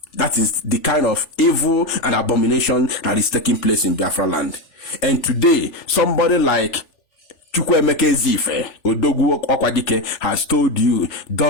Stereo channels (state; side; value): late; right; 3.4 ms